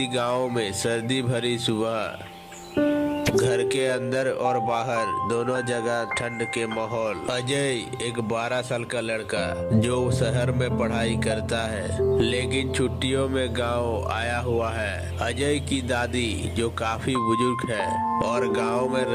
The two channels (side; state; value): both; identical; correlation 1.00